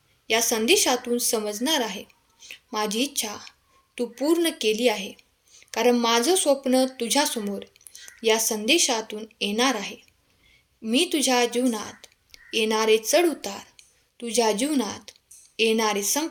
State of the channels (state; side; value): identical; both; correlation 1.00